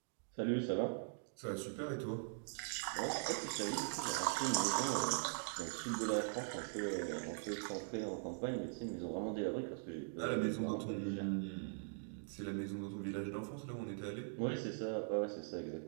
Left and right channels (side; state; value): left; silent; digital silence